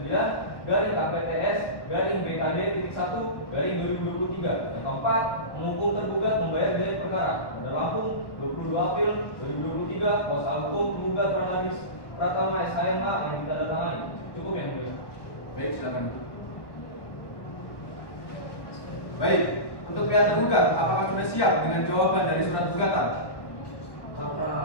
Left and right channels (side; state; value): right; late; 1.1 ms